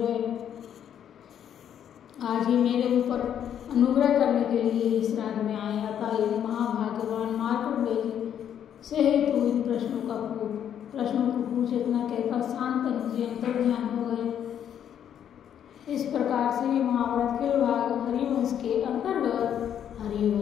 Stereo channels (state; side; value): quieter; right; 9.4 dB